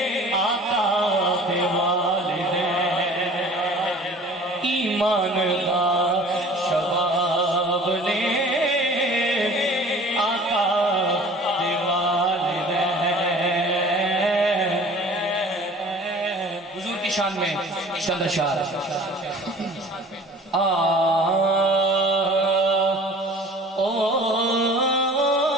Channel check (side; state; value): both; normal; correlation 0.46